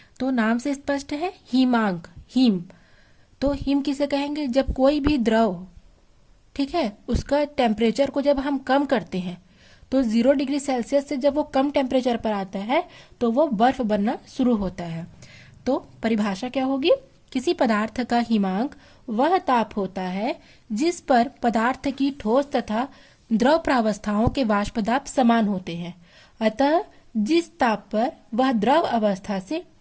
तो नाम से स्पष्ट है, हिमांक, हिम। तो हिम किसे कहेंगे? जब कोई भी द्रव, ठीक है, उसका टेम्परेचर को जब हम कम करते हैं तो 0 डिग्री सेल्सियस से जब वो कम टेम्परेचर पर आता है तो वो बर्फ बनना शुरू होता है। तो परिभाषा क्या होगी? किसी पदार्थ का हिमांक वह ताप होता है जिस पर पदार्थ की ठोस तथा द्रव प्रावस्थाओं के वाष्प दाब समान होते हैं। अतः जिस ताप पर वह द्रव अवस्था से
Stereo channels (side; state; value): both; identical; correlation 1.00